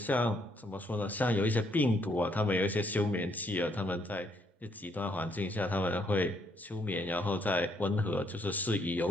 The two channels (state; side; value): normal; both; correlation 0.71